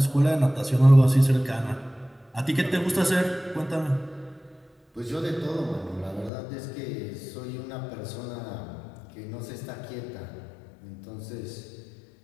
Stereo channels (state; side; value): drops out; right; at 6.3 s